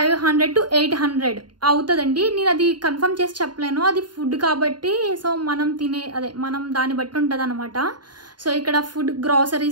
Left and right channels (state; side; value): late; left; 0.71 ms